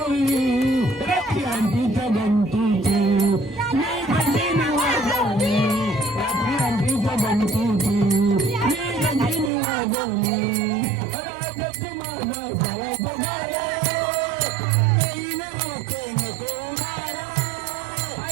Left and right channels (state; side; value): drops out; left; at 9.5 s